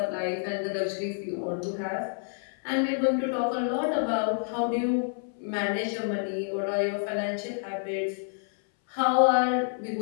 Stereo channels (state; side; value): silent; right; 59 dB below the other